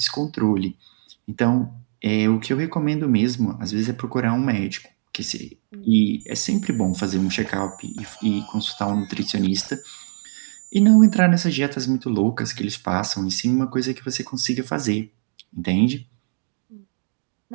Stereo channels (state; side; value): silent; left; digital silence